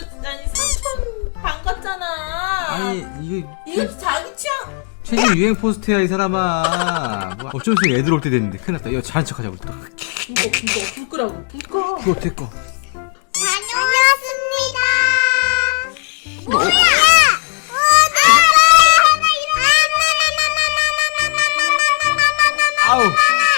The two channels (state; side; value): quieter; right; 39.2 dB